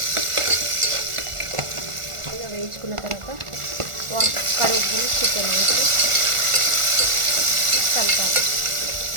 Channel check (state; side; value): late; left; 1.4 ms